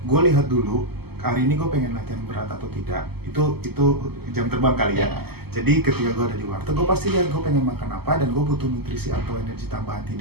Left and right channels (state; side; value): late; left; 0.96 ms